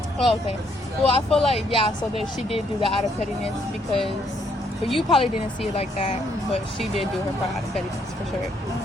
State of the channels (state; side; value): normal; both; correlation 0.71